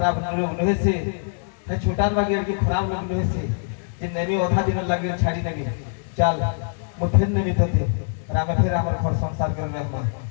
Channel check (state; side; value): silent; right; digital silence